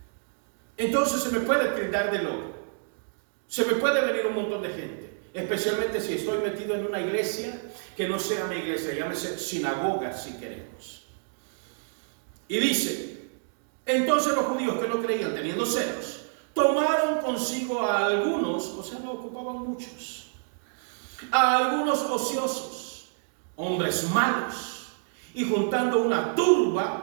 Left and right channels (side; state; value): left; silent; digital silence